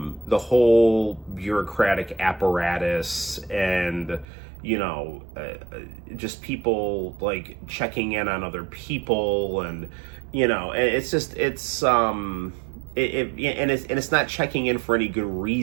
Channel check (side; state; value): left; drops out; at 4.2 s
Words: whole bureaucratic apparatus and, just people like checking in on other people, and, it's not checking in for any good